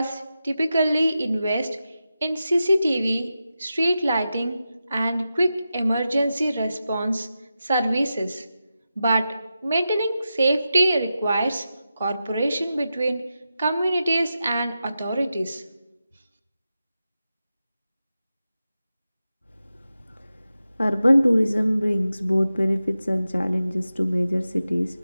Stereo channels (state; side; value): inverted; both; correlation -0.91